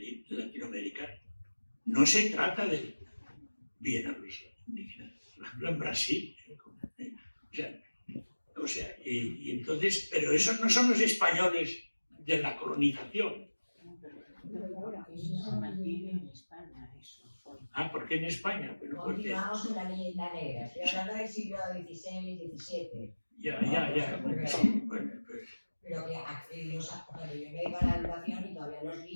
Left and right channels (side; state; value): both; inverted; correlation -1.00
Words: Latinoamérica no se trata de bien a los indígenas. Por ejemplo, en Brasil. O sea, y entonces, pero esos no son los españoles de la colonización. Se mantiene en España, eso. Ah, ¿por qué en España? Bueno, continuamos con la leyenda negra. Estoy hablando del siglo XVI, XVII. Ya. Bueno, sí. Bueno, pues. Pero que cuando yo me dedico a la educación y todavía los